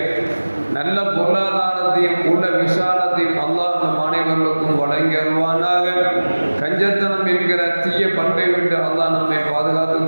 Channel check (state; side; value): inverted; both; correlation -1.00